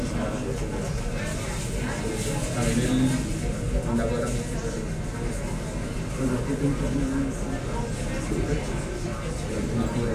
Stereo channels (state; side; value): identical; both; correlation 1.00